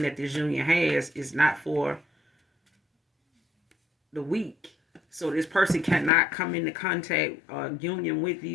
that this union has is not for the weak. So this person cannot come into contact or union with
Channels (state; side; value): drops out; right; at 6.1 s